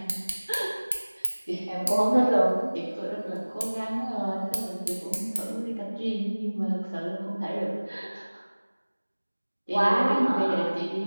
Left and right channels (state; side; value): inverted; both; correlation -1.00